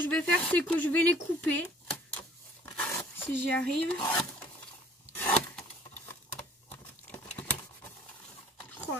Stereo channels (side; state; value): both; normal; correlation 0.55